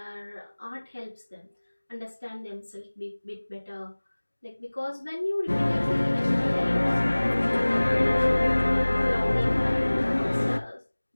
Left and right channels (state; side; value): inverted; both; correlation -1.00